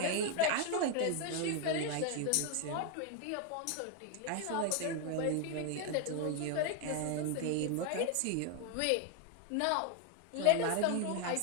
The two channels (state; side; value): different; both; correlation 0.00